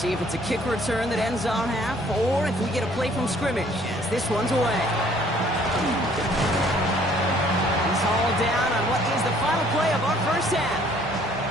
if it's a kick return that ends our half, or if we get a play from scrimmage, as this one's away. He's hauled down on what is the final play of our first half.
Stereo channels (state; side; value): normal; both; correlation 0.59